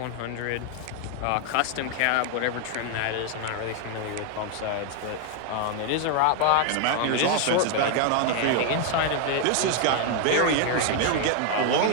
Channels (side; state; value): both; different; correlation 0.00